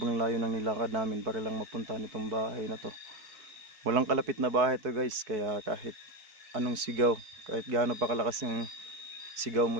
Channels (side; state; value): left; late; 4.6 ms